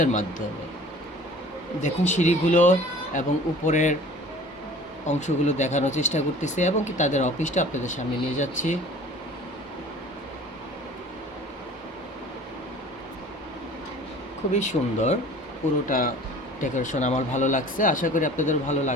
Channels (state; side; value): normal; both; correlation 0.46